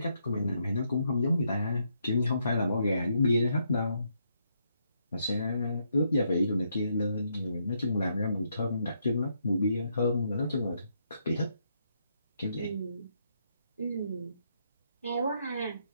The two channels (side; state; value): both; inverted; correlation -0.76